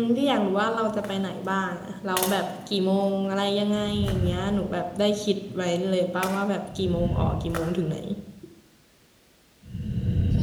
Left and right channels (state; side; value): identical; both; correlation 1.00